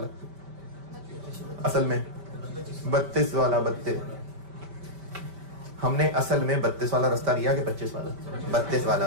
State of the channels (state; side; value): late; left; 5.1 ms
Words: असल में 32 वाला, 32 हमने असल में 32 वाला रास्ता लिया कि 25 वाला, 32